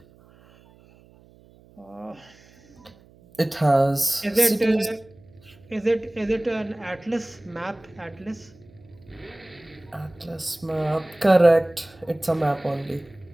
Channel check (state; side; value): noise; right; hum, 27 dB below the sound